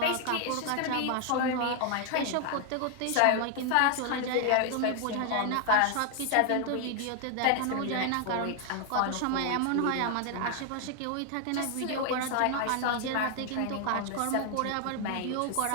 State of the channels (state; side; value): different; both; correlation 0.00